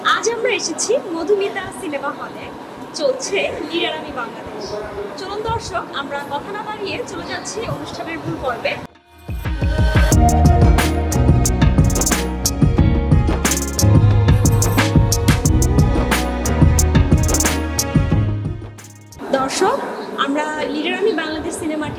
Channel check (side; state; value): both; identical; correlation 1.00